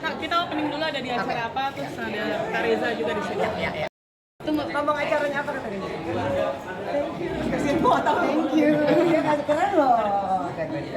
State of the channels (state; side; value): identical; both; correlation 1.00